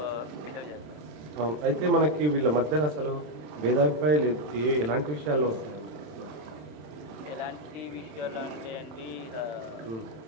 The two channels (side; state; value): left; late; 27 ms